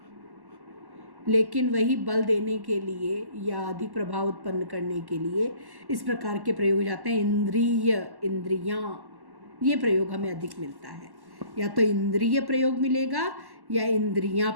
लेकिन वही बल देने के लिए या अधिक प्रभाव उत्पन्न करने के लिए इस प्रकार के प्रयोग हो जाते हैं। इंद्रिय, इंद्रियां, ये प्रयोग हमें अधिक मिलता है। या तो इंद्रिय प्रयोग मिलेगा या इंद्रियां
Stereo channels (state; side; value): late; left; 1.1 ms